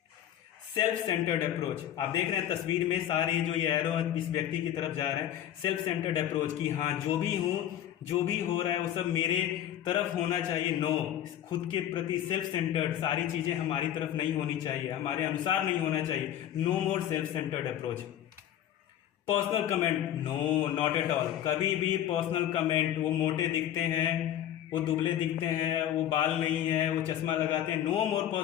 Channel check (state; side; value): quieter; right; 11.2 dB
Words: Self centred approach, आप देख रहे हैं तस्वीर में सारे जो ये एरो इस व्यक्ति की तरफ जा रहे हैं। सेल्फ सेंटर्ड अप्रोच की हाँ जो भी हूँ, जो भी हो रहा है वो सब मेरे तरफ होना चाहिए। नो, खुद के प्रति सेल्फ सेंटर्ड, सारी चीजें हमारी तरफ नहीं होनी चाहिए, हमारे अनुसार नहीं होना चाहिए। No more self centred approach. Personal comment, no, not at all. कभी भी पर्सनल कमेंट, वो मोटे दिखते हैं, वो दुबले दिखते हैं, वो बाल नहीं है, वो चश्मा लगाते हैं, no more